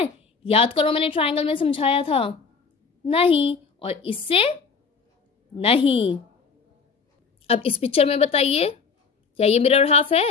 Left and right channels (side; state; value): right; quieter; 5.3 dB